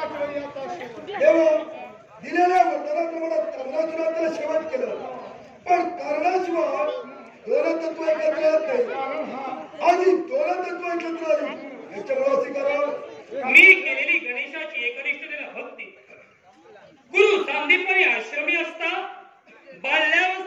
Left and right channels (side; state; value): both; identical; correlation 1.00